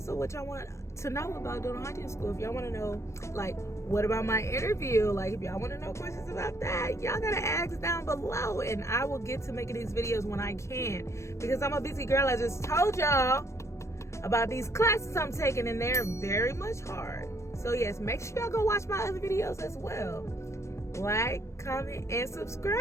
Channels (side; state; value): right; late; 0.14 ms